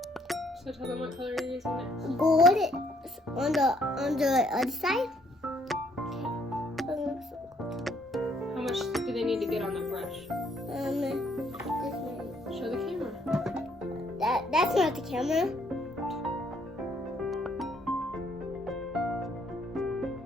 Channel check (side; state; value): both; normal; correlation 0.67